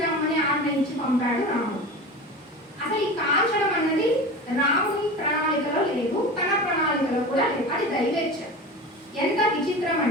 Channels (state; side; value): normal; both; correlation 0.31